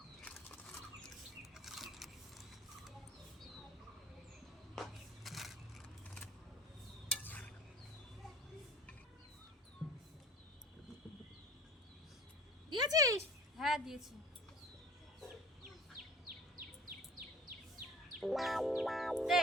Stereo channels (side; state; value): both; normal; correlation 0.45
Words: দিয়েছিস? হ্যাঁ দিয়েছি।